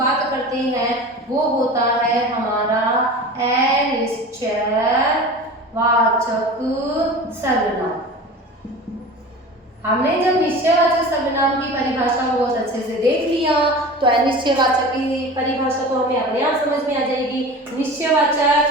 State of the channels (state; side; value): normal; both; correlation 0.35